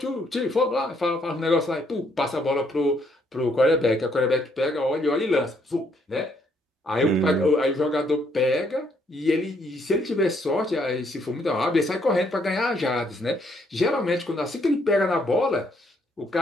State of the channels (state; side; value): normal; both; correlation 0.70